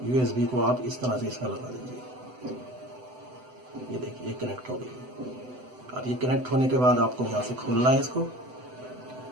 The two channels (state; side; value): late; left; 7.9 ms